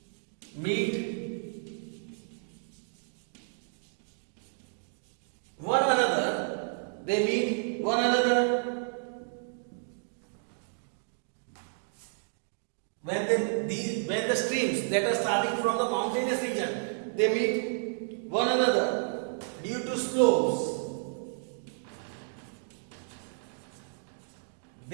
meet one another, they meet one another. When the streams that are starting from the mountainous region, they meet one another due to slopes.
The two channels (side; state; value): left; silent; digital silence